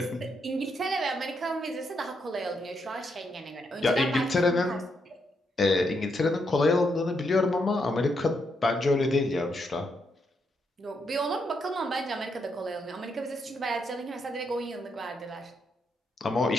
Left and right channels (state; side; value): normal; both; correlation 0.79